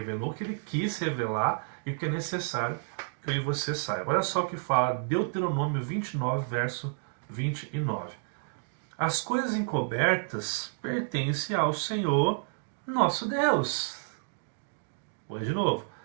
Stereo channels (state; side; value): silent; left; digital silence